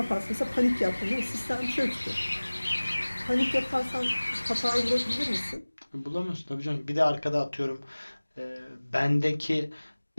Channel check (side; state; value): both; inverted; correlation -1.00